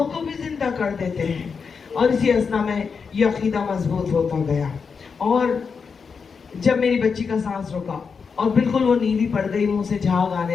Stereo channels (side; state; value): right; quieter; 5.6 dB